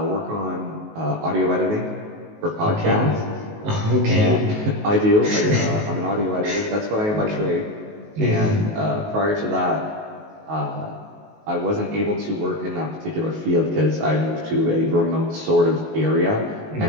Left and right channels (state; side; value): late; left; 19 ms